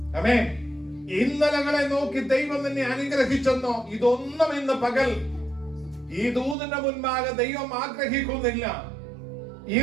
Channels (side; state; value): left; drops out; at 6.6 s